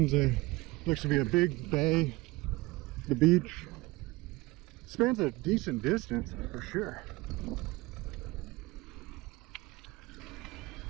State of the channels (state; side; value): quieter; left; 21.6 dB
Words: looks to be a big bay. The beach spans a decent distance for sure.